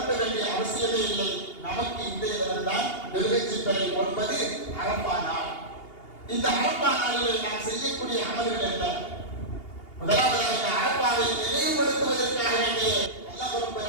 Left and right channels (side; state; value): right; late; 2.8 ms